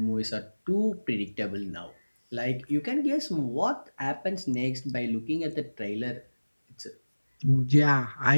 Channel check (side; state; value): both; inverted; correlation -1.00